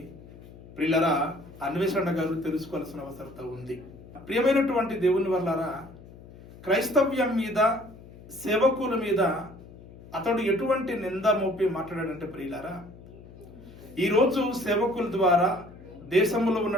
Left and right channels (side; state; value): left; noise; hum, 19 dB below the sound